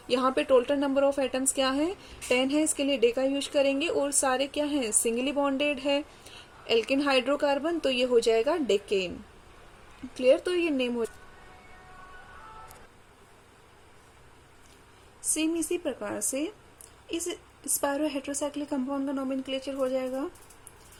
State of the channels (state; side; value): identical; both; correlation 1.00